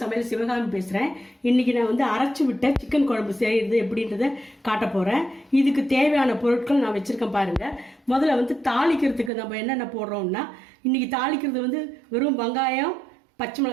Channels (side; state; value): left; drops out; at 9.3 s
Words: சமையல் சிவகாமி பேசுகிறேன். இன்றைக்கி நான் வந்து அரைச்சி விட்ட சிக்கன் குழம்பு செய்கிறது எப்படின்றத காட்ட போகிறேன். இதுக்கு தேவையான பொருட்கள் நான் வச்சுருக்கேன் பாருங்கள். முதல்ல வந்து தாளிக்கிறதுக்கு நம்ம என்னென்ன போடுறோம்னா, இன்றைக்கி தாளிக்கிறது வந்து வெறும் வெங்காயம், பச்சை